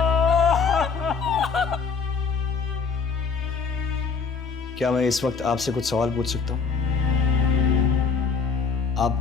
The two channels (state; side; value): quieter; right; 5.4 dB